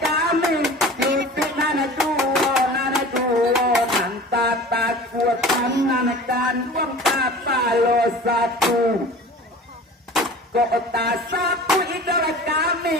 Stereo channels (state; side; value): normal; both; correlation 0.40